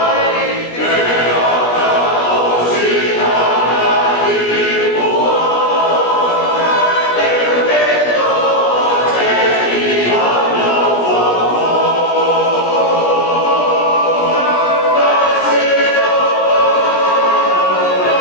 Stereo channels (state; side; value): late; right; 17 ms